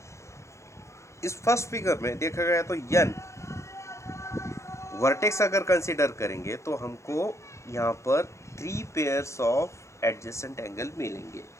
इस फर्स्ट फिगर में देखा गया तो यन वर्टेक्स अगर कंसीडर करेंगे तो हमको यहाँ पर 3 पेयर्स ऑफ एडजेसेंट एंगल मिलेंगे,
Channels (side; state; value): right; late; 0.14 ms